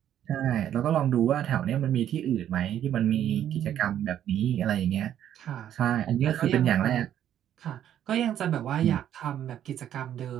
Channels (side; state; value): left; quieter; 10.6 dB